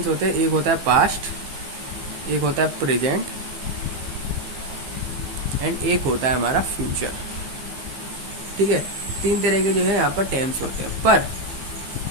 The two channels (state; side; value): late; left; 15 ms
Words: होते हैं? एक होता है पास्ट, एक होता है प्रेजेंट एंड एक होता है हमारा फ्यूचर। ठीक है, 3 तरह के जो है यहाँ पर टेंस होते हैं।